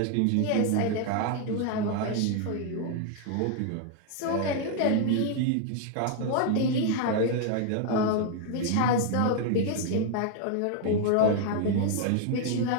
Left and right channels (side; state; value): both; different; correlation 0.00